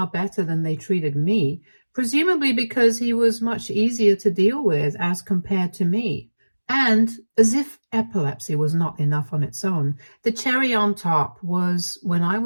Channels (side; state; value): both; inverted; correlation -1.00